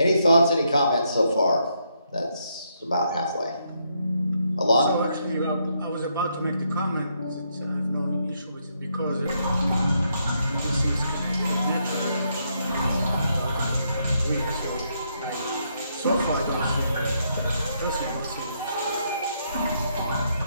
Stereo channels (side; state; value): both; inverted; correlation -0.76